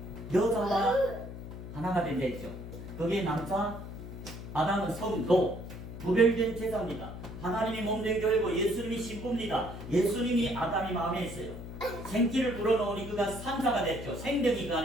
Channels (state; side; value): noise; left; hum, 10 dB below the sound